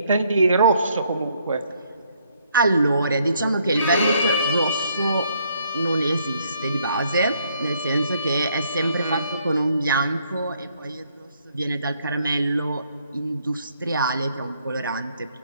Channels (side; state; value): both; inverted; correlation -0.69